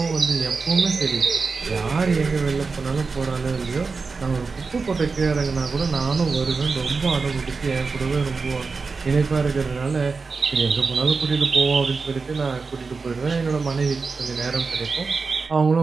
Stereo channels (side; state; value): left; quieter; 4.5 dB